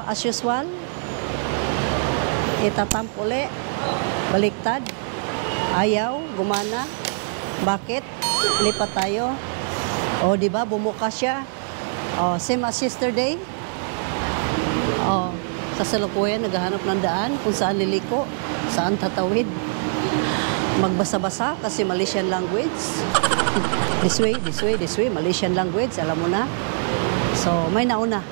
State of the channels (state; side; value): silent; left; 63 dB below the other